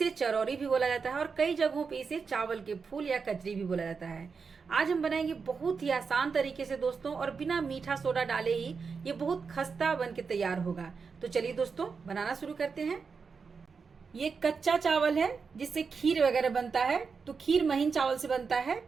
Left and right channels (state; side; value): quieter; left; 5.3 dB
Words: चरौरी भी बोला जाता है और कई जगहों पे इसे चावल के फूल या कचरी भी बोला जाता है। आज हम बनाएंगे बहुत ही आसान तरीके से दोस्तों, और बिना मीठा सोडा डाले ही ये बहुत खस्ता बन के तैयार होगा। तो चलिए दोस्तों, बनाना शुरू करते हैं। ये कच्चा चावल है जिससे खीर वगैरह बनता है, तो खीर महीन चावल से बनता है।